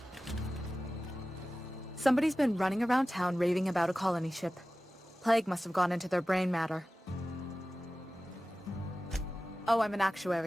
Somebody's been running around town raving about a colony ship. Plague must have gone into their brain matter. Oh, I'm an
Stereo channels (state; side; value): normal; both; correlation 0.96